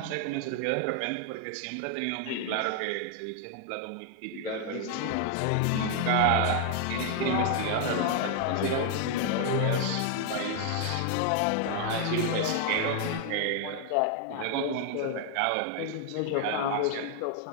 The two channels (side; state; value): both; different; correlation 0.00